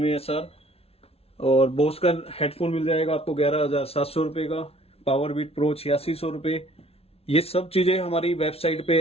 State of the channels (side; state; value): right; late; 0.29 ms